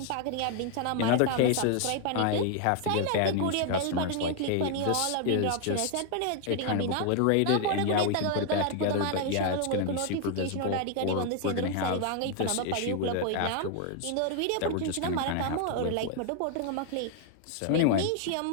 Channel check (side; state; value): both; different; correlation 0.00